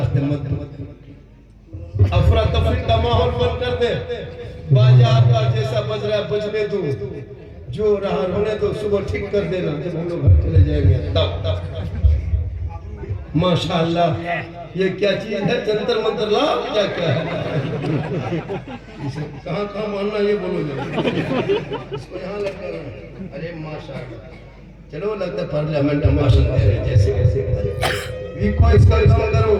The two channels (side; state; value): both; identical; correlation 1.00